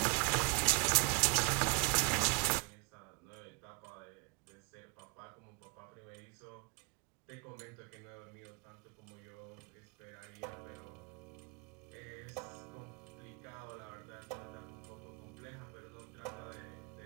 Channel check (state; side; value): quieter; left; 32.0 dB